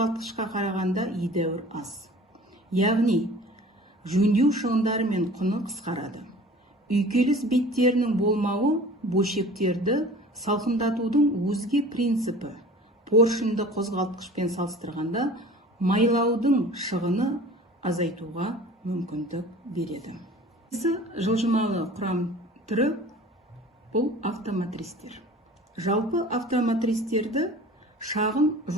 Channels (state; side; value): normal; both; correlation 0.43